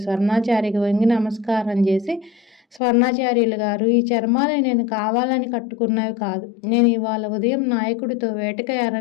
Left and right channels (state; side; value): drops out; right; at 2.8 s